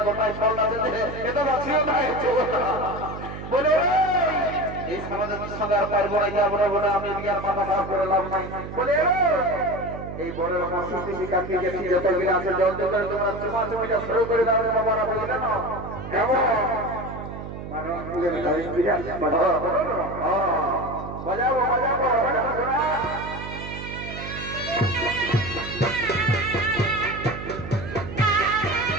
এই সমাজের সঙ্গে আর পারবো না যাবো না আমি আর মাথা খারাপ করে লাভ নাই বলে এই বড় কাকে গেছি যত আছে জল দিয়ে তোমরা চুমা চুমিটা শুরু করে দাও বাবারা বলে না কেমন বাজাবো বাজাবো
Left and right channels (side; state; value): right; noise; hum, 9 dB below the sound